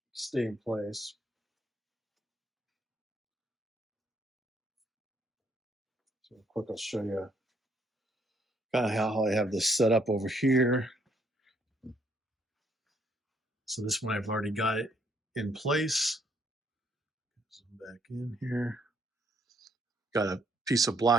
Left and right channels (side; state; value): both; normal; correlation 0.69